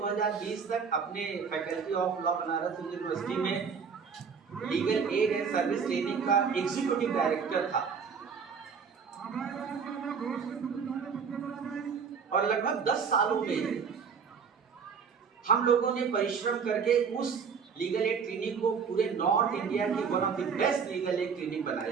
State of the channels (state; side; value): quieter; left; 6.1 dB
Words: तक अपने faculty of law Banaras university में legal aid and service training का एग्जीक्यूटिव डायरेक्टर था, और लगभग 10 सालों में हम लोगों ने परिश्रम करके उस लीगल एड क्लिनिक को पूरे नॉर्थ इंडिया की one of the best legal aid clinic